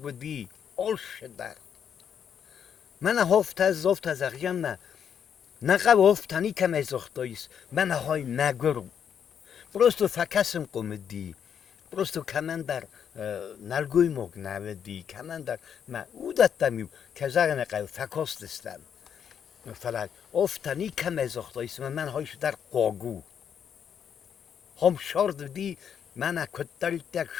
بدی اولش در منا هفت از زفت از اغیم نه نقاو هفتانی کم از اختاییست منا های نگرم Просто факасым комеди, просто камандар налгой мог наведи, камандар ма удаттамю казарна қай факостестам. Фалат офтани камезохтойс ман хойш дар қогу. Хом шорд ди мана котталтак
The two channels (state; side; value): quieter; right; 8.1 dB